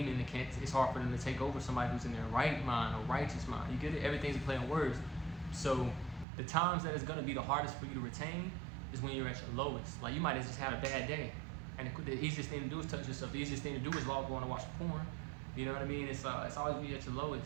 it's hard for them to take over somebody who's in their right mind or righteous mind. You get it? Everything's a play on words. So the times that it's gonna be the hardest for you to retain is when you're at your lowest. Like, you might have just had a bad day, and the easiest thing to do is touch yourself. The easiest thing to do is log on and watch porn. You know what I mean? It's always when you're at your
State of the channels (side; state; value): left; drops out; at 6.2 s